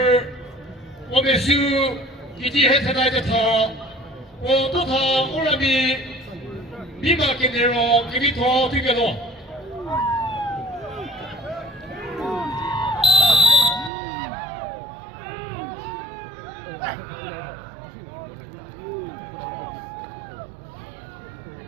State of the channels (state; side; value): drops out; left; at 13.9 s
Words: o mesu, iti hetenai de ta, o tota orami, viva que nero, que vito, tigero.